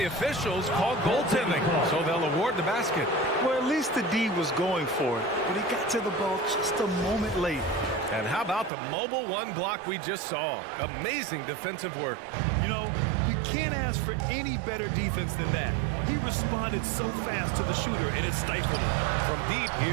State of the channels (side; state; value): left; drops out; at 8.7 s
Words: officials call goaltending, so they'll award the basket. Well, at least the D was going for it, but he got to the ball just a moment late. And how about the mobile 1 block we just saw? Amazing defensive work. You know, you can't ask for any better defense than that. He responded so fast to the shooter, and it stifled him. From deep,